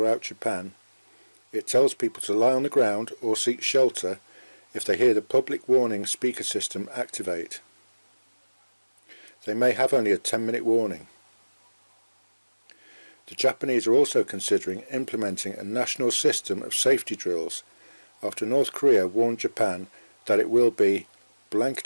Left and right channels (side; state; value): both; inverted; correlation -1.00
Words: Japan, it tells people to lie on the ground or seek shelter if they hear the public warning speaker system activate. They may have only a 10-minute warning. The Japanese are also considering implementing a national system of safety drills after North Korea warned Japan that it will be